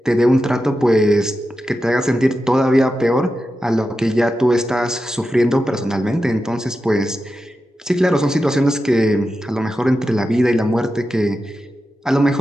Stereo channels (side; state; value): both; normal; correlation 0.90